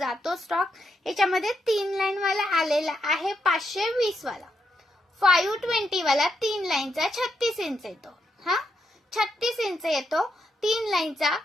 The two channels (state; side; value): normal; both; correlation 0.81